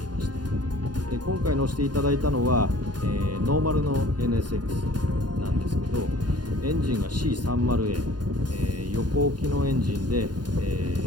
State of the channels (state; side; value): late; left; 0.70 ms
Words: いました。で今回乗せていただいたのは、ノーマルの NSX なんですけど、エンジンが C30A、横置きのエンジンで、ウ